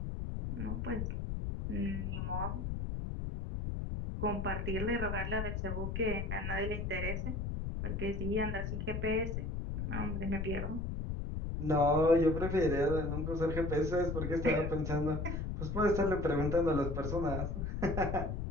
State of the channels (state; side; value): noise; left; rumble, 2 dB below the sound